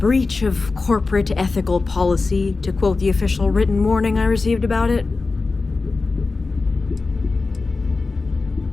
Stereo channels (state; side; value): quieter; right; 3.9 dB